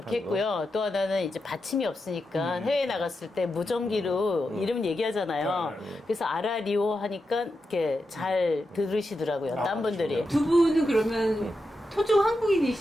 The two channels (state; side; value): normal; both; correlation 0.88